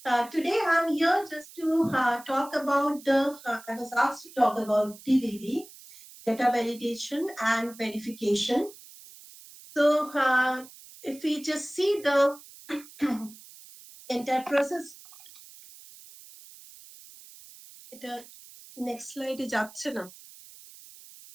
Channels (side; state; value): right; noise; hiss, 20 dB below the sound